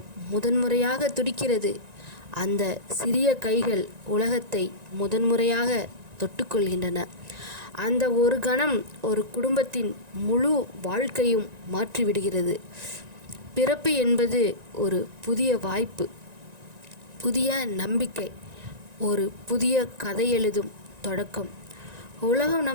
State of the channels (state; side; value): late; left; 1.9 ms